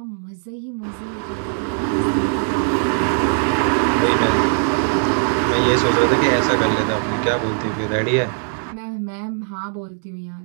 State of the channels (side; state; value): left; silent; 66 dB below the other